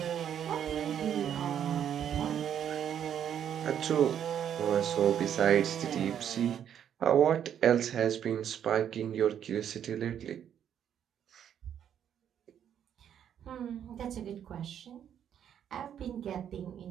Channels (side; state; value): left; quieter; 9.3 dB